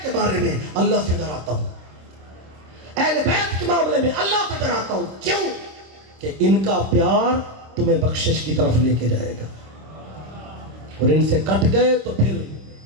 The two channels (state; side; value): late; left; 26 ms